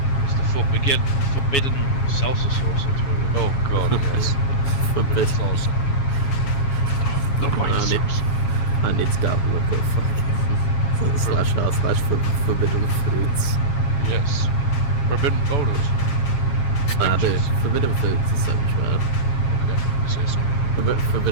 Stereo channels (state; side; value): late; right; 7.4 ms